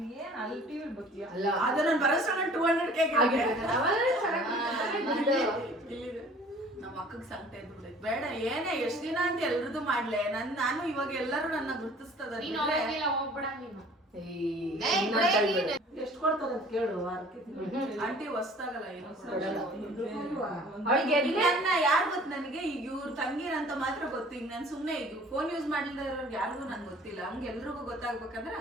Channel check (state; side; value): normal; both; correlation 0.50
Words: ಏನ್ ಅಲ್ಲಿ ಟಿವಿ ಬರ್ತೀಯಾ? ಅದು ನಾನು ಬರೋಷ್ಟು 200K ನಮ್ಮ ಅಕ್ಕಗೆ ಸಂಕಟ ಇದ್ಬಿಟ್ಟೆ. ಬೇಡ ಏನೇ ಎಷ್ಟು ದಿನ ಅಂತ ಎಲ್ರದ್ದು ಮಾಡ್ಲೆ. ನಾನು ಇವಾಗ ಎಲ್ಲರೂ ನನ್ನ ಗುರ್ತಿಸ್ತದ. ಹೋಗ್ಬೇಡ ನೀನು. ಎಷ್ಟು ಕೊಡ್ತಾರೆ ಅಂತ ಕೇಳು ವಾರಕ್ಕೆ. ಆಂಟಿ ಹೊಸ್ದಾಗಲ್ಲ ಏನೋ ಅವಳಿಗೆ ಯಾರು ಗೊತ್ತು ನನಗೆ. ಈಗ ಇವ್ರ ತಂಗಿರಂತ ಮಾತ್ರ ಗೊತ್ತು. ಈಗ ನಾನು ಸುಮ್ನೆ ಈಗ ಫೋನ್ ಯೂಸ್ ಮಾಡಿಲ್ದ ಇರೋರ್ಗೆ ಯಾರಿಗೂ ನನ್ಗೆ ಗೊತ್ತಿಲ್ಲ. ಹಂಗೆ ಎಲ್ರಿಗೂ ಗೊತ್ತಾಗ್ಬೇಕಂದ್ರೆ